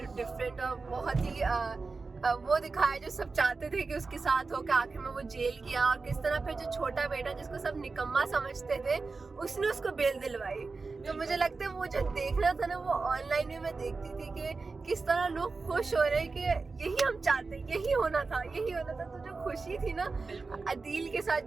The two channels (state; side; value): quieter; left; 4.1 dB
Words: डिफरेंट और बहुत ही वो दिखाया जो सब चाहते थे कि उसके साथ हो, के आखिर में वो जेल गया, और किस तरह फिर जो छोटा बेटा जिसको सब निकम्मा समझते थे उसने उसको बेल दिलवाई। तो मुझे लगता है वो जो देखना था ना वो ऑनलाइन में मैं देखती थी कि किस तरह लोग खुश हो रहे हैं कि यही हम चाहते, यही होना था, यही होना था। तो जो खुशी थी ना अदील के साथ